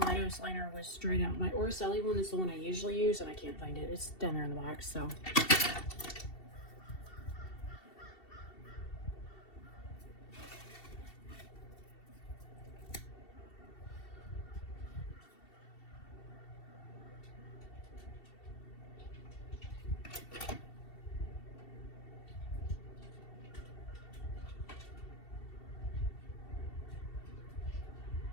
liner was dried out. My Orselli one is the one I usually use, and I can't find it. It's down there in the box, so.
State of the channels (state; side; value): late; right; 2.7 ms